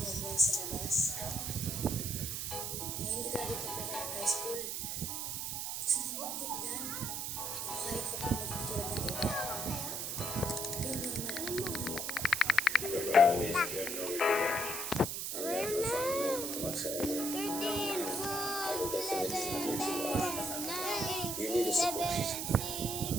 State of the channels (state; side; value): noise; right; hiss, 3 dB below the sound